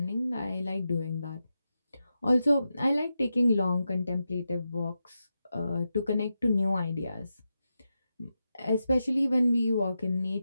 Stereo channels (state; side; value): inverted; both; correlation -0.89